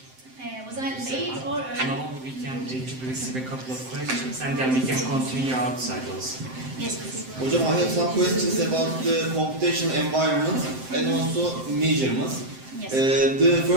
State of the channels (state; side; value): late; left; 7.7 ms